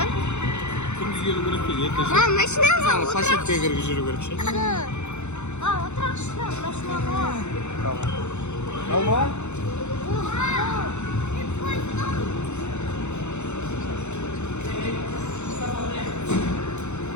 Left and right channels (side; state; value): right; late; 0.83 ms